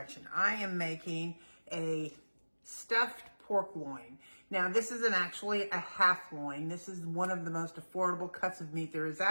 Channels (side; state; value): both; inverted; correlation -1.00